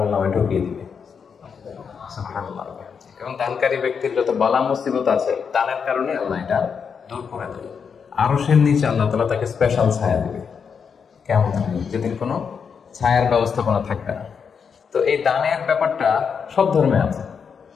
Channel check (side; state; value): right; quieter; 6.4 dB